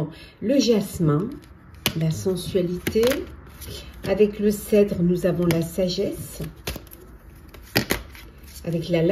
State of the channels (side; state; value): both; identical; correlation 1.00